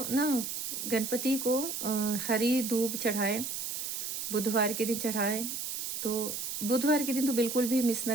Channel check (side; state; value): right; noise; hiss, 4 dB below the sound